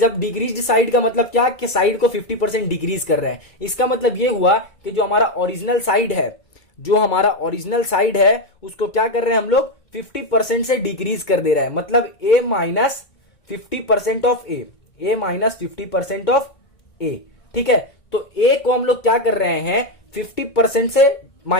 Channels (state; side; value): late; right; 2.2 ms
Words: डिक्रीज्ड साइड का मतलब क्या, कि साइड को 50% डिक्रीज कर रहे हैं, इसका मतलब ये हुआ कि जो हमारा ओरिजिनल साइड है, जो हमारा ओरिजिनल साइड है उसको क्या कर रहे हैं हम लोग 50% से डिक्रीज कर दे रहे हैं, मतलब a minus 50% of a, a minus 50% of a, ठीक है। तो a को हम लोग क्या कर रहे हैं 50% से